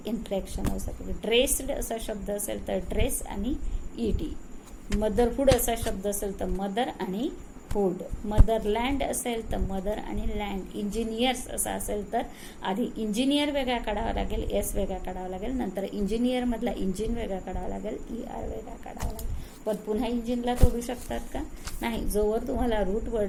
inflectional suffix. Dressed असा शब्द असेल तर ड्रेस आणि ED. मदरहुड असा शब्द असेल तर मदर आणि हुड. मदरलँड असेल तर मदर आणि लँड. इंजिनियर्स असा असेल तर आधी इंजिनियर वेगळा काढावा लागेल एस वेगळा काढावा लागेल. नंतर इंजिनियर मधला इंजिन वेगळा काढावा लागेल ER वेगळा काढावा लागेल. पण पुन्हा इंजिनला तोडू शकतात का नाही. जोवर तुम्हाला रूट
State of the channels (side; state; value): both; identical; correlation 1.00